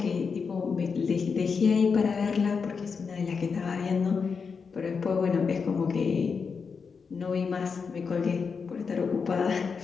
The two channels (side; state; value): right; quieter; 5.5 dB